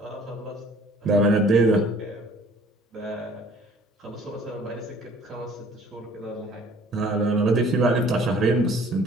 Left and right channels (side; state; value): both; normal; correlation 0.53